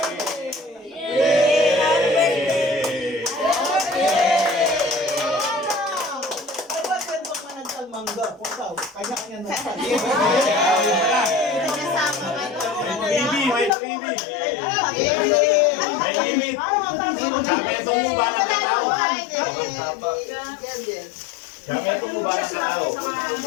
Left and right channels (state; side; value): drops out; right; at 13.8 s